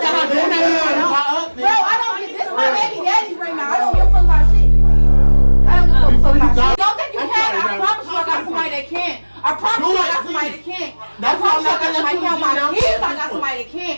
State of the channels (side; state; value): both; inverted; correlation -1.00